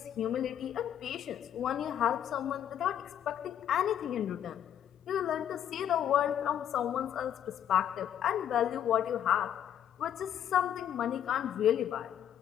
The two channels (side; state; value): right; quieter; 10.0 dB